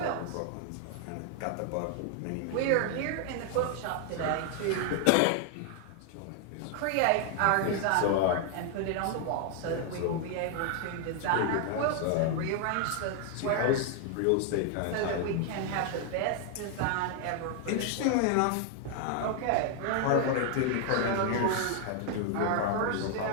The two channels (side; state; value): both; different; correlation 0.00